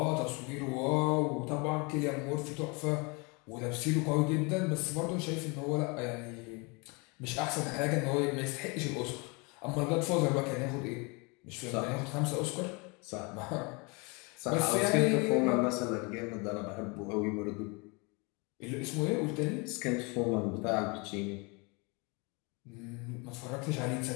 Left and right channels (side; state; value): right; quieter; 29.8 dB